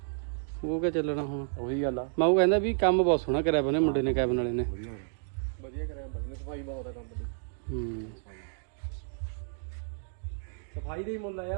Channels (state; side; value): silent; left; digital silence